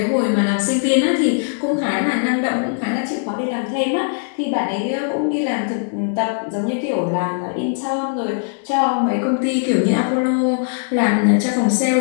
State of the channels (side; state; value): right; silent; digital silence